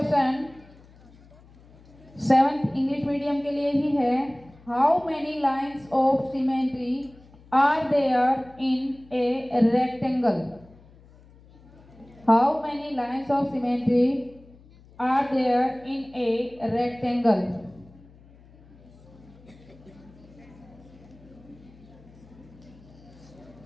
7th English medium के लिए ही है। How many lines of symmetry are there in a rectangle? How many lines of symmetry are there in a rectangle?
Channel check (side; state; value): left; noise; hum, 25 dB below the sound